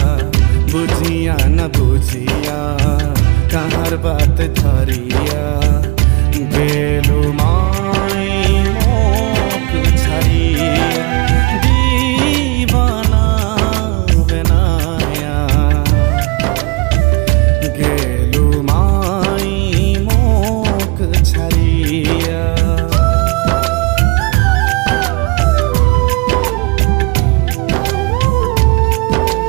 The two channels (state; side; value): quieter; left; 27.4 dB